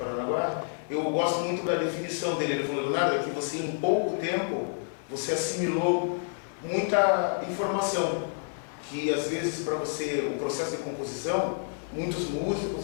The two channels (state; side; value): silent; right; digital silence